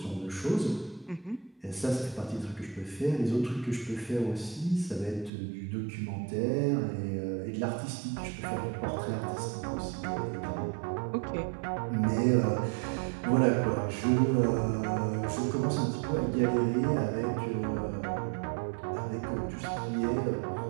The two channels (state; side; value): drops out; left; at 5.3 s